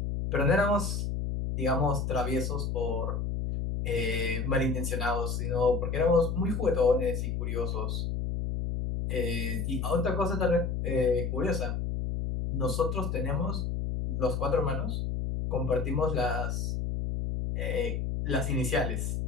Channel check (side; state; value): left; noise; hum, 1 dB below the sound